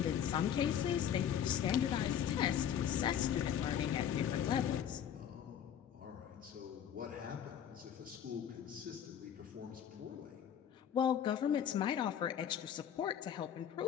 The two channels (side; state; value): right; quieter; 9.2 dB